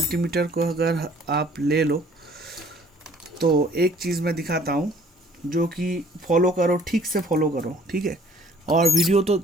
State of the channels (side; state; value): both; normal; correlation 0.55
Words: को अगर आप ले लो, तो एक चीज़ मैं दिखाता हूँ जो कि फॉलो करो, ठीक से फॉलो करो, ठीक है। और वीडियो तो